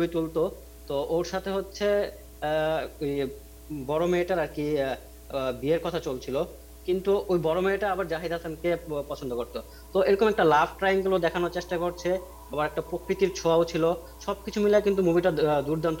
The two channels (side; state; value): both; identical; correlation 1.00